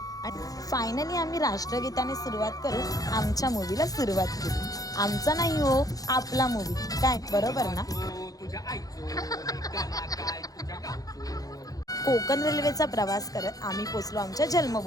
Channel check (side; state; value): right; late; 0.18 ms